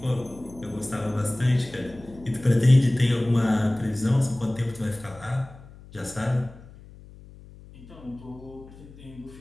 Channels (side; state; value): left; noise; hum, 20 dB below the sound